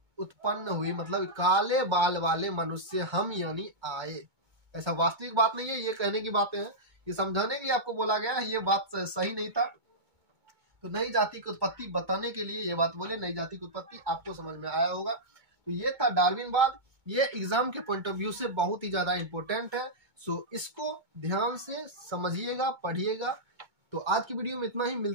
उत्पन्न हुई। मतलब काले बाल वाले मनुष्य हम यानी आए। ऐसा वास्तविक बात नहीं है, ये कहने की बातें हैं, ये समझाने के लिए आपको बोला गया है, ये बात सही नहीं था। तो नई जाति की उत्पत्ति बताने के लिए ये बात बोले। नई जाति की उत्पत्ति आपको समझ में आया होगा। तो ये था डार्विनवाद। ये एग्जाम के पॉइंट ऑफ व्यू से बहुत ही ज्यादा इंपॉर्टेंट है। सो इसको ध्यान से समझिएगा, पढ़िएगा। तो आज की वीडियो में इतना ही,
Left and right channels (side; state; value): left; late; 2.2 ms